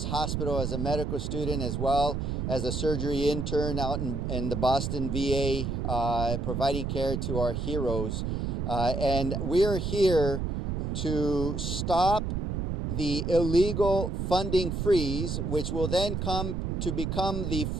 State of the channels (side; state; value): right; noise; rumble, 1 dB below the sound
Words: Hospital as a medical student, as well as a surgery intern out in the Boston VA, providing care to our heroes. And we are here to stop the illegal funding freeze, which will then come to become the